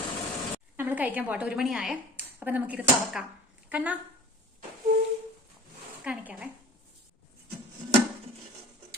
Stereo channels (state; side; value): normal; both; correlation 0.41